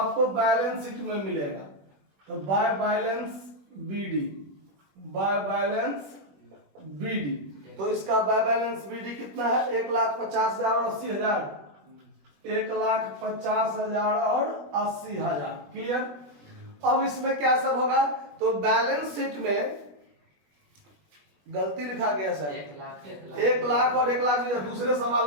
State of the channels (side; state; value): left; late; 21 ms